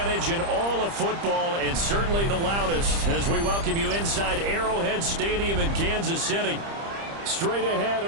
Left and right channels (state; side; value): late; left; 30 ms